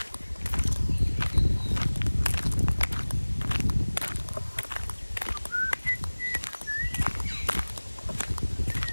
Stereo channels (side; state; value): both; inverted; correlation -1.00